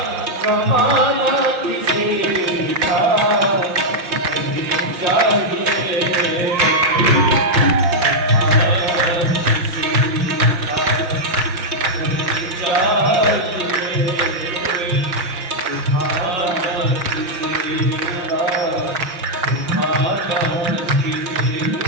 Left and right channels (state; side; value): late; left; 5.5 ms